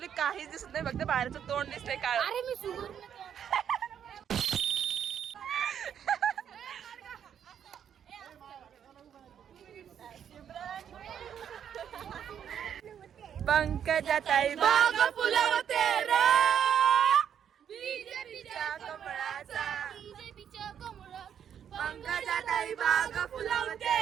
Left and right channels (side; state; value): left; quieter; 8.8 dB